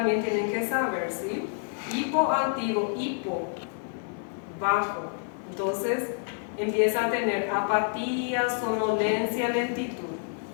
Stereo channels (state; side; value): silent; right; 59 dB below the other